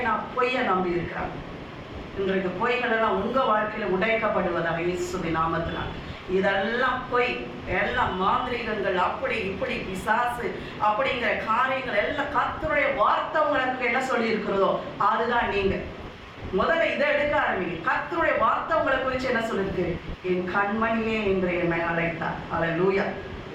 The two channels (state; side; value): identical; both; correlation 1.00